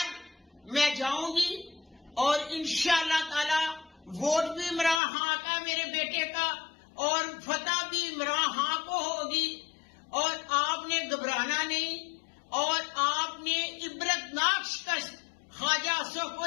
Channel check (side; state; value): right; drops out; at 5.0 s